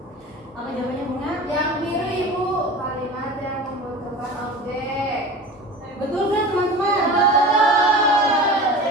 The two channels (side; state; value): both; normal; correlation 0.35